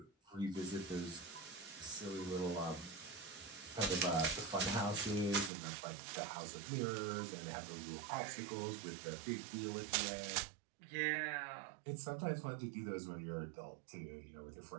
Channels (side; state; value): left; drops out; at 5.5 s